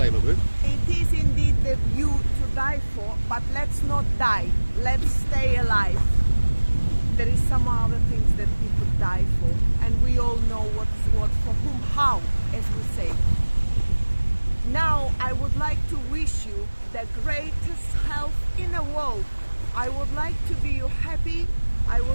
LaBouffe? It is indeed the view to die for, but let's not die. Let's stay alive. There is some other things that we could die for, and we all know what is what, for whom, how, as we say. Now, I would like to wish you the greatest health in the world. I would like to be you happy. I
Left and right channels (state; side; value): inverted; both; correlation -1.00